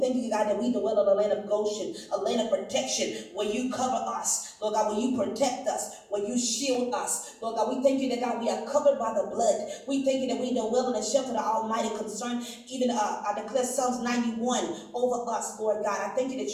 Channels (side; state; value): both; identical; correlation 1.00